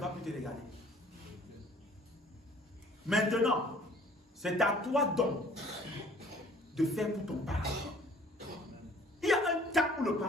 plus te regarder. Maintenant, c'est à toi donc de faire pour ton parent. Il y a un temps où le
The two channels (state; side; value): normal; both; correlation 0.54